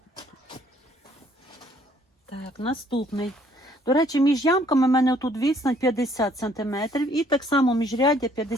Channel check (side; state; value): both; normal; correlation 0.63